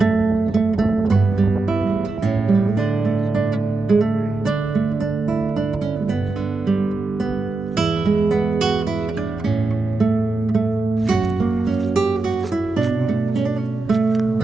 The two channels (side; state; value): left; quieter; 3.3 dB